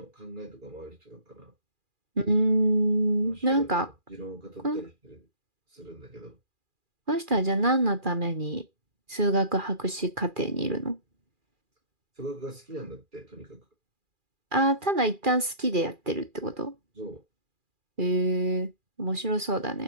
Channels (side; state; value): left; late; 2.4 ms